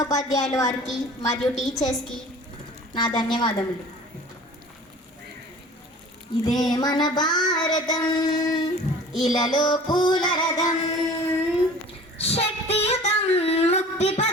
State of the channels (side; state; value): both; normal; correlation 0.44